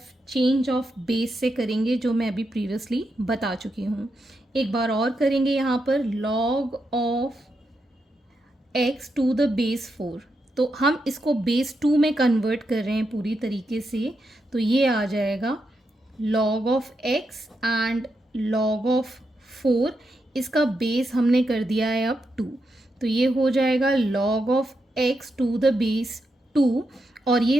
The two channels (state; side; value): normal; both; correlation 0.84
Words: change of base से करेंगे, जो मैं अभी प्रीवियसली बता चुकी हूँ. एक बार और करेंगे यहाँ पर log of x to the base 4. तो हम इसको बेस 2 में कन्वर्ट कर रहे हैं पूरी तरीके से, तो ये आ जाएगा log of x and log of 4. इसका बेस हमने कर दिया है अब 2, तो ये हो जाएगा log of x to the base 2, और ये